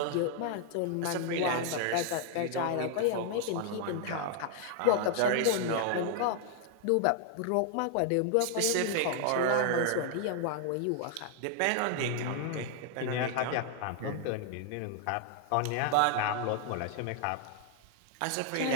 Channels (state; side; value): different; both; correlation 0.00